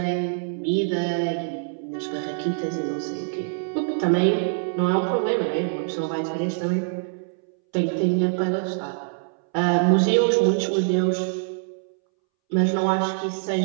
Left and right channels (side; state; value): left; silent; 62 dB below the other